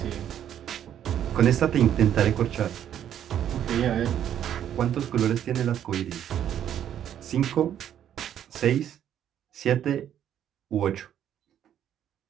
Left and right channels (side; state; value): left; quieter; 10.2 dB